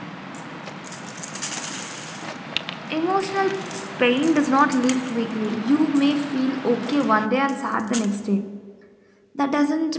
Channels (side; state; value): both; identical; correlation 1.00